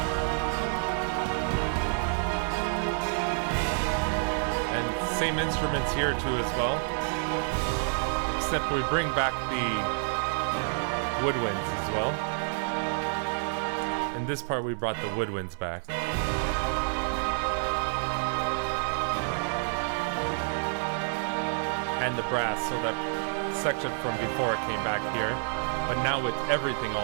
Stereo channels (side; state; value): left; silent; 59 dB below the other